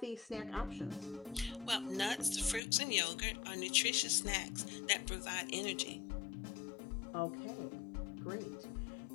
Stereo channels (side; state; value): right; drops out; at 2.6 s